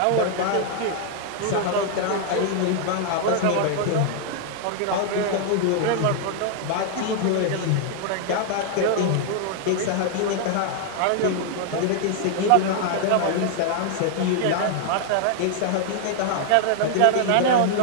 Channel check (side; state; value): both; different; correlation 0.00